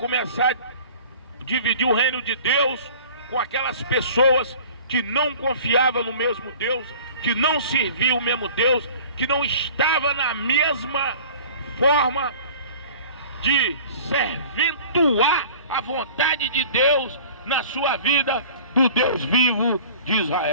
a dividir o reino de Deus com aquelas pessoas que não confiavam no mesmo Deus, que não serviam o mesmo Deus, que não estava na mesma forma de serventuar a vontade de Deus na sua vida, do Deus vivo de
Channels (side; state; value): both; inverted; correlation -0.45